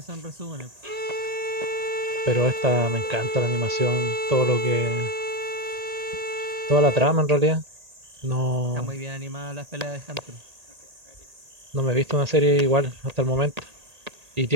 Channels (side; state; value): left; late; 1.8 ms